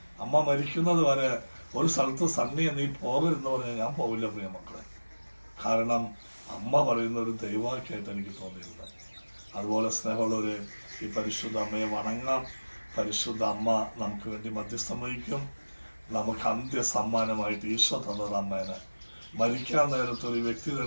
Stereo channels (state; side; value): inverted; both; correlation -1.00